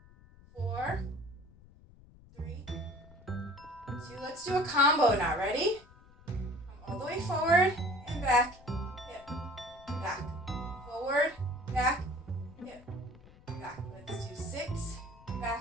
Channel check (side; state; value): left; noise; rumble, 23 dB below the sound